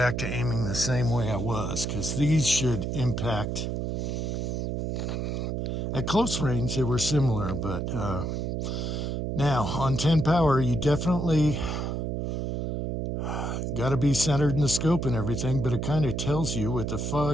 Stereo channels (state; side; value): noise; right; hum, 2 dB below the sound